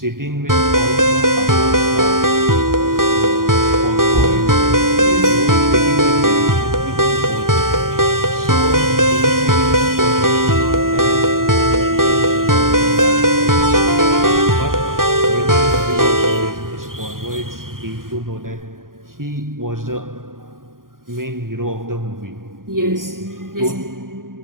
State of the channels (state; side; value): late; left; 0.91 ms